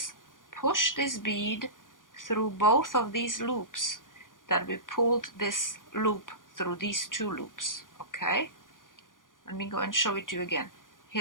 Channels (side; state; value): right; late; 0.89 ms